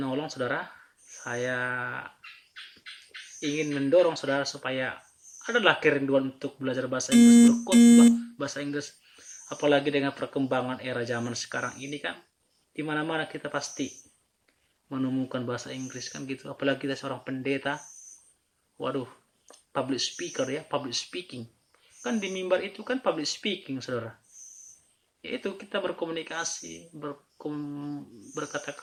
saudara. Saya ingin mendorong saudara supaya adalah kerinduan untuk belajar bahasa Inggris, berkhotbah bahasa Inggris. Apalagi dengan perkembangan era zaman sekarang ini kan, di mana-mana kita pasti menemukan bahasa Inggris kan gitu. Apalagi kita seorang pendeta, waduh, public speaker ya, public speaking. Kan di mimbar itu kan public speaking, saudara. Yaitu kita berkomunikasi,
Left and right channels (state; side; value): identical; both; correlation 1.00